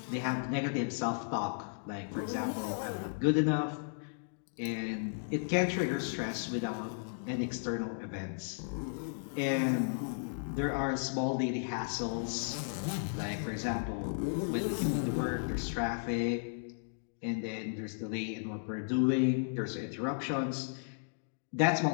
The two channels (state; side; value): silent; right; digital silence